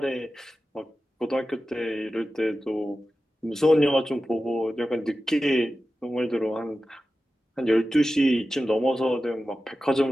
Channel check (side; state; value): both; normal; correlation 0.94